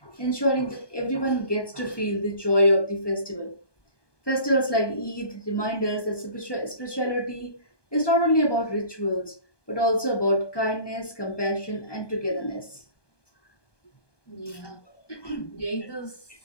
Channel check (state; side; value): late; right; 1.2 ms